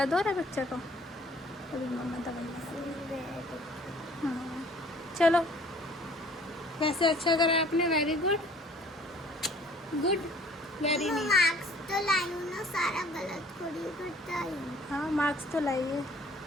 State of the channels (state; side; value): normal; both; correlation 0.55